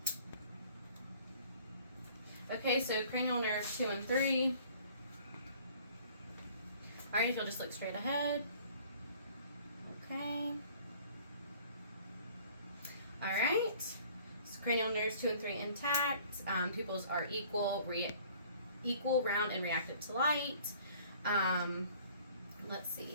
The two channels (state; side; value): inverted; both; correlation -0.53